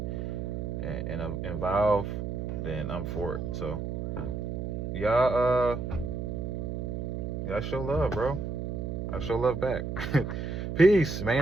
evolve, then I'm for it. So y'all show love, bro. I show love back. Peace,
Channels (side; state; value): right; noise; hum, 4 dB below the sound